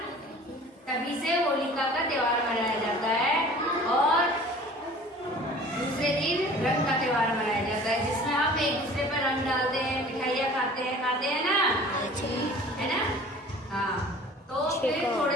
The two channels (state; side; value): normal; both; correlation 0.46